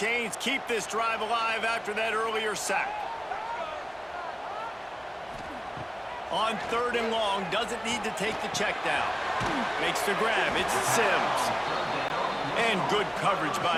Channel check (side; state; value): both; identical; correlation 1.00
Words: keep this drive alive after that earlier sack. On third and long, doesn't need to take the check down. Makes the grab, it's Sims. And good coverage